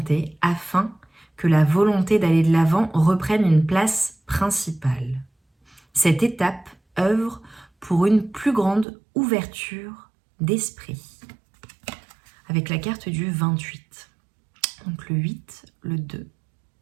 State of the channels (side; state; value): left; drops out; at 8.8 s